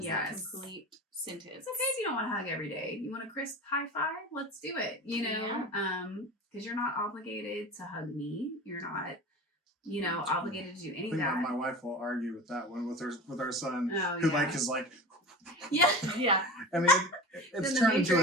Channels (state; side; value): normal; both; correlation 0.33